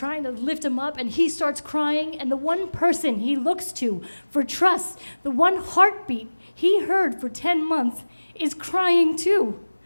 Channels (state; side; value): inverted; both; correlation -1.00